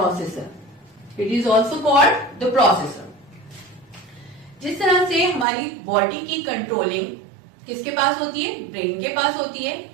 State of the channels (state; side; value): drops out; left; at 5.5 s